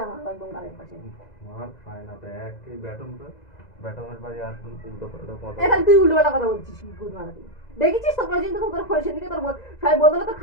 আমার একদম গালের পাশে। মার খায় না তো একই ব্যাটমের বাড়ি আর উল্টো পাল্টা কথা। এখন তুই উল্টো পাল্টা কথা বলছিস কি গুড মারাতি। দেখেছিস তো প্রয়োজন তো তোর ফোন সেদিকে তোর সবাই বদলে তো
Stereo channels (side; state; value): right; late; 2.0 ms